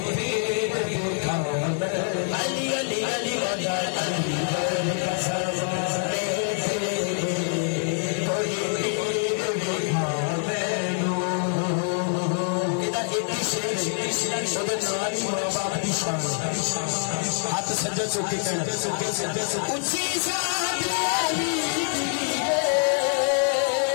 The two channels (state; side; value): silent; right; 61 dB below the other